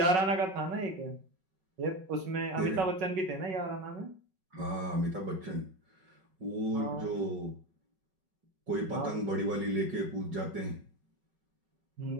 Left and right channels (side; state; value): left; late; 5.3 ms